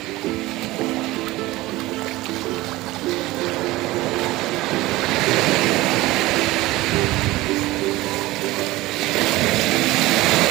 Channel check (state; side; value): quieter; left; 18.8 dB